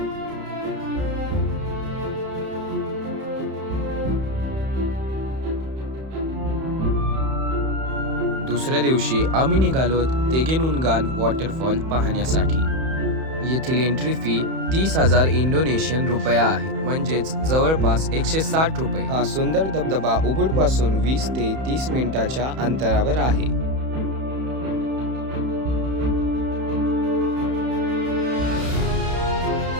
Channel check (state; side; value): late; left; 31 ms